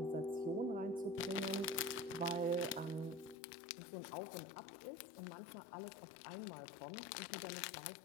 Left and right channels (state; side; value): drops out; right; at 3.4 s